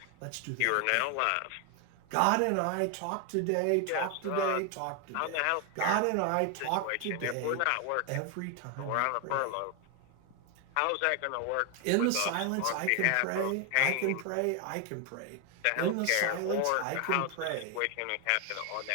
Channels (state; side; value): different; both; correlation 0.00